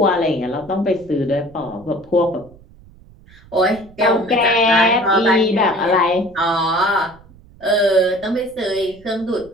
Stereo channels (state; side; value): noise; right; rumble, 24 dB below the sound